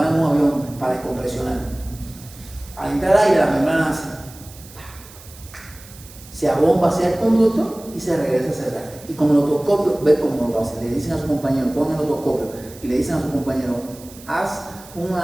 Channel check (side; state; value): right; noise; hiss, 20 dB below the sound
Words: en un avión para descompresionar. Al entrar aire, la membrana hace, se abomba hacia el conducto y se regresa a cerrar. Y con el otoscopio, ve cómo lo hace. Le dicen a su compañero, pon el otoscopio, y le dicen a su compañero, haz